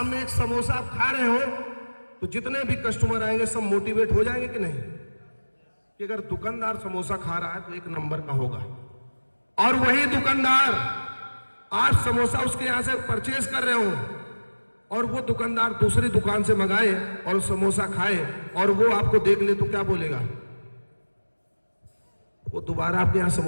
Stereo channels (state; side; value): inverted; both; correlation -1.00